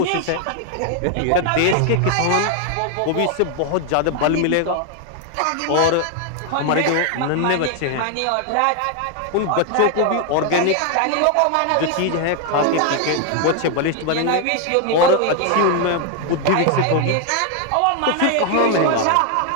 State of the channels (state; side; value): different; both; correlation 0.01